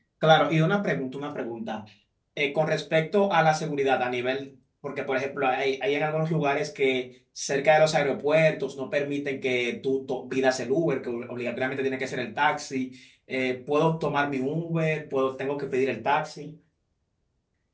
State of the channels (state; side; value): identical; both; correlation 1.00